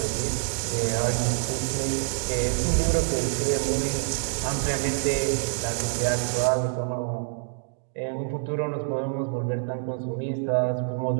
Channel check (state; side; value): silent; left; digital silence